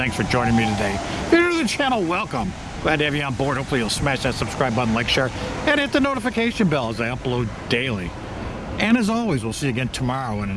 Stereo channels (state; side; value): identical; both; correlation 1.00